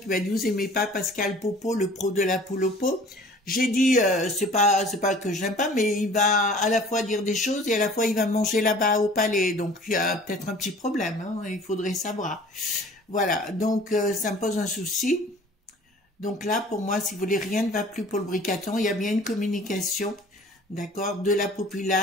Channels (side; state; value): both; normal; correlation 0.48